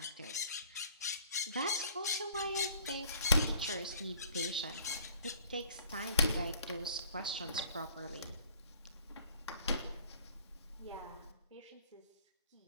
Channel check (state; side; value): inverted; both; correlation -0.55